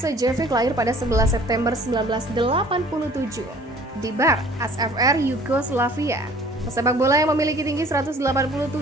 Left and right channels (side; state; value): both; normal; correlation 0.51